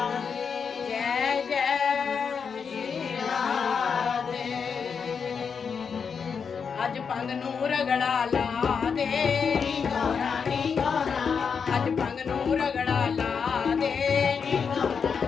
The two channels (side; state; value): right; quieter; 6.2 dB